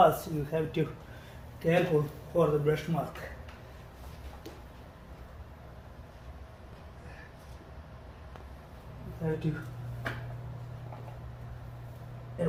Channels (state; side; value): identical; both; correlation 1.00